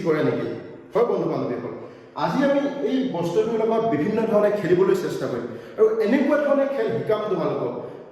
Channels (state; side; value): identical; both; correlation 1.00